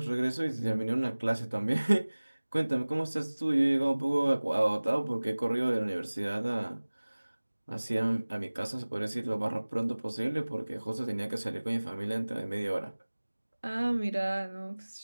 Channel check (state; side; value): inverted; both; correlation -1.00